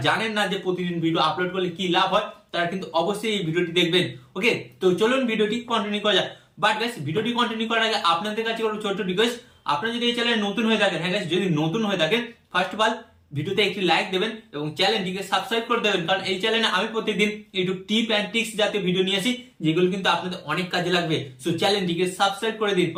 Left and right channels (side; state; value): both; identical; correlation 1.00